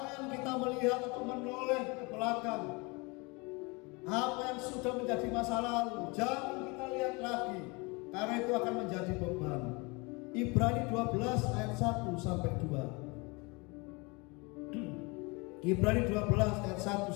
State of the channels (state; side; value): quieter; right; 27.8 dB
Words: kita melihat atau menoleh ke belakang apa yang sudah menjadi masa lalu. Jangan kita lihat lagi, karena itu akan menjadi beban. Ibrani 12 ayat 1 sampai 2. Ibrani 12 ayat